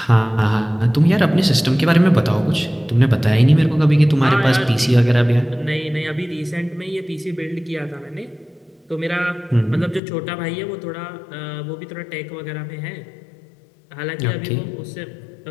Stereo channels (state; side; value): drops out; right; at 10.0 s